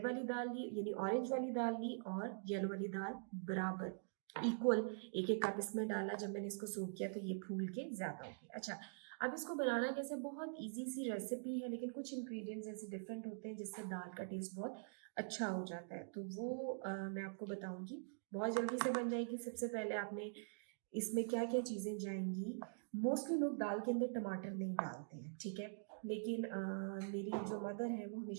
वाली दाल ली, यानी ऑरेंज वाली दाल ली और येलो वाली दाल बराबर इक्वल एक एक कप इसमें डाला। जब मैंने इसको सोक किया तो ये फूल के ज़्यादा हो गया। अच्छा, अब इसको बनाना कैसे, बहुत इजी सी रेसिपी है, लेकिन कुछ इंग्रेडिएंट्स ऐसे डिफरेंट होते हैं जिससे दाल का टेस्ट बहुत अच्छा हो जाता है, तो वो मैं आपको बताऊंगी। बहुत जल्दी से बन जाएगी। सबसे पहले आपने इसमें क्या क्या चीज़ें जाएंगी। मोस्टली लोग दाल के अंदर टमाटर नहीं डालते हैं, ठीक है, लेकिन मेरी जो मदर है वो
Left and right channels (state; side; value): silent; left; digital silence